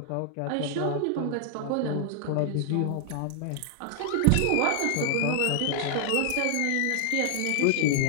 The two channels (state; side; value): different; both; correlation 0.00